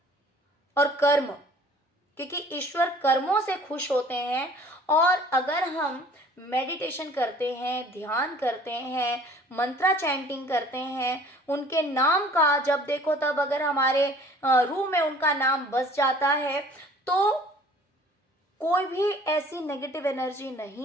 और कर्म, क्योंकि ईश्वर कर्मों से खुश होते हैं। और अगर हम मेडिटेशन करते हैं, ध्यान करते हैं, मंत्रा चैंटिंग करते हैं, उनके नाम का जब देखो तब अगर हमारे रूह में उनका नाम बस जाता है, तो कोई भी ऐसी नेगेटिव एनर्जी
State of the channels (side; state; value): both; normal; correlation 0.52